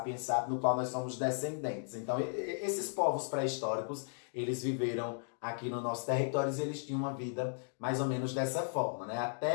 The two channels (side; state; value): right; silent; digital silence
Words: sapiens, no qual nós somos descendentes. Então, esses povos pré-históricos, eles viveram aqui no nosso território e eles tinham uma vida mais ou menos dessa forma, né,